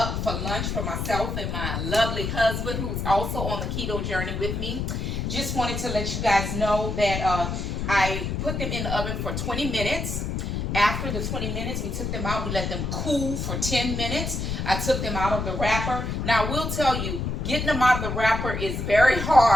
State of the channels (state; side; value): noise; left; rumble, 2 dB below the sound